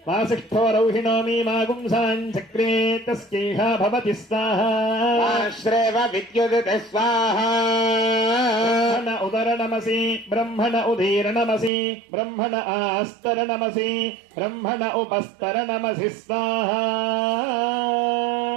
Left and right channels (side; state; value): left; drops out; at 11.7 s